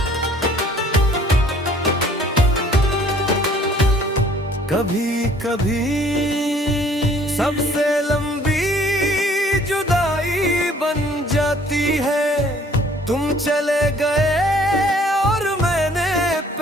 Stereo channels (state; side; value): normal; both; correlation 0.57